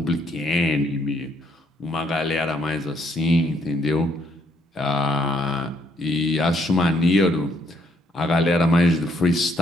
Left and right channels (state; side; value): normal; both; correlation 0.70